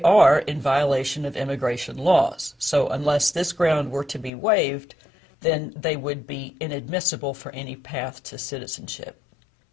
are in violation of immigration laws. So unless this ground were to be waived, then they would be inadmissible for any path to citizenship.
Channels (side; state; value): right; drops out; at 4.3 s